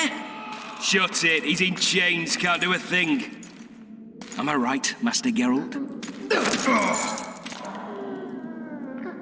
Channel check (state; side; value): identical; both; correlation 1.00